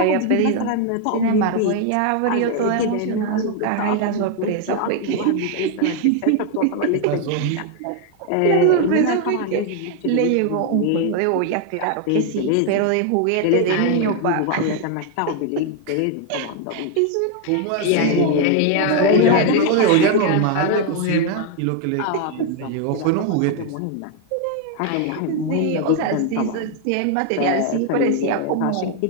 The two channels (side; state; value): both; different; correlation 0.00